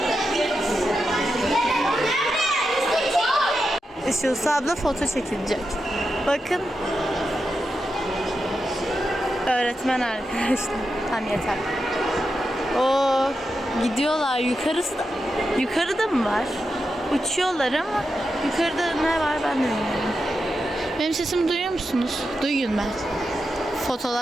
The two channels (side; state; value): both; normal; correlation 0.88